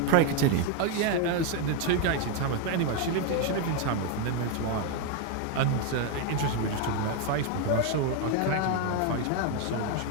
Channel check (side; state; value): both; different; correlation 0.01